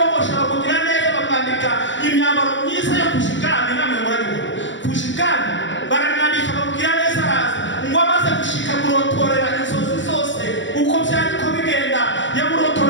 bakugira neza bakandika imyambaro myiza yo kushikana namwe murabibona kushikana baramwandika bakugira neza araza ngo amaze gushika murotorera inzozi zose uko byari ko bigenda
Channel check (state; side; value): late; right; 0.54 ms